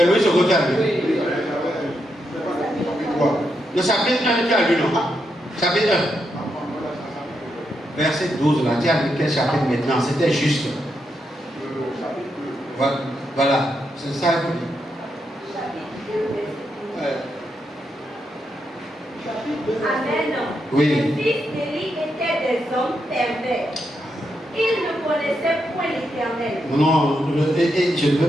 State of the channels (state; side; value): normal; both; correlation 0.82